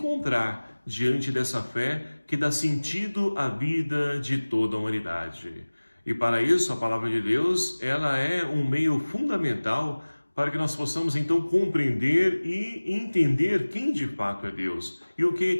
diante dessa fé que dá sentido à vida de toda a humanidade. E para isso a palavra de Deus, ela é um meio fundamental para que nós possamos então compreender e entender quem de fato é Deus e o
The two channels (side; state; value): both; inverted; correlation -1.00